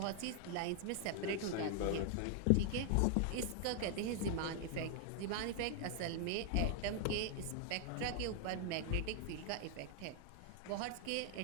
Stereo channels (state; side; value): different; both; correlation 0.00